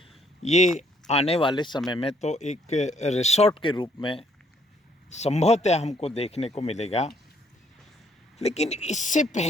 ये आने वाले समय में तो एक रिसोर्ट के रूप में संभवतः हमको देखने को मिलेगा, लेकिन इससे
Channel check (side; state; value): both; normal; correlation 0.67